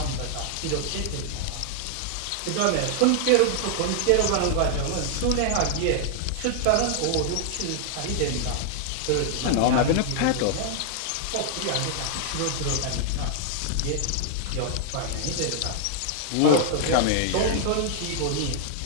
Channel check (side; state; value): both; different; correlation 0.00